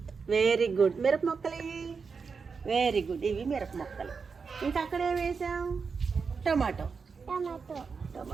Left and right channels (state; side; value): quieter; left; 5.3 dB